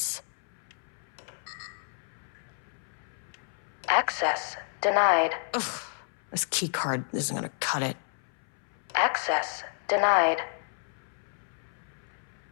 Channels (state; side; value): silent; right; 57 dB below the other